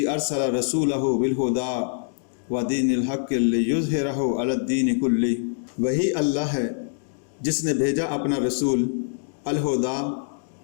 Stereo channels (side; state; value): right; silent; digital silence